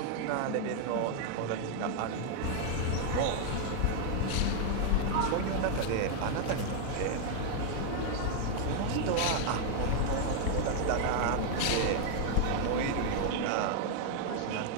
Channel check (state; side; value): different; both; correlation 0.00